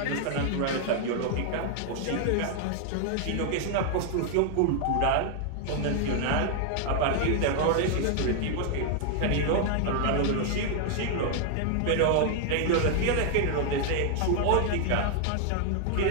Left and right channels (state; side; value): different; both; correlation 0.00